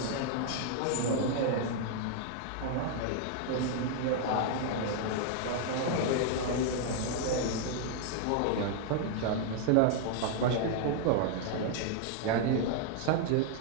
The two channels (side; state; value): both; different; correlation -0.01